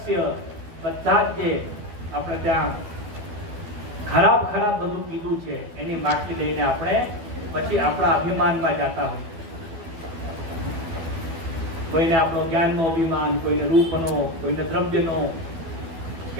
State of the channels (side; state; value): left; late; 12 ms